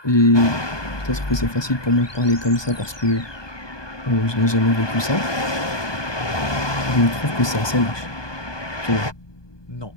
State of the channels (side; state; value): right; late; 1.2 ms